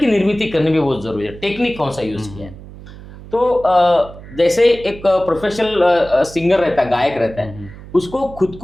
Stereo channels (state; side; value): noise; right; hum, 16 dB below the sound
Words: निर्मिति करनी भी बहुत ज़रूरी है। टेक्निक कौन सा यूज़ किया है। तो जैसे एक प्रोफेशनल सिंगर रहता है, गायक रहता है, उसको खुद